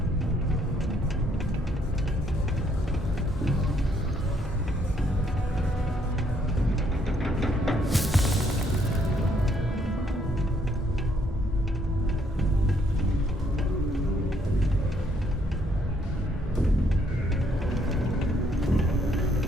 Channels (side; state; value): both; normal; correlation 0.69